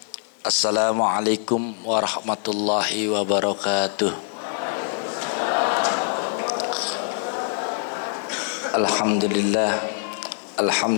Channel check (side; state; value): right; silent; digital silence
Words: Assalamualaikum warahmatullahi wabarakatuh. Alhamdulillah,